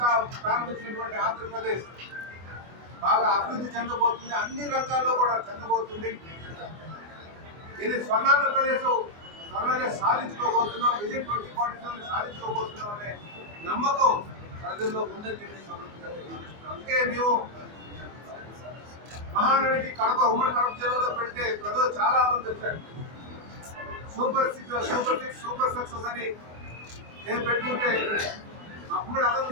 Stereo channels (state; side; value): late; left; 24 ms